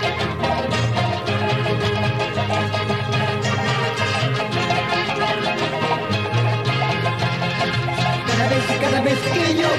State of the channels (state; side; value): identical; both; correlation 1.00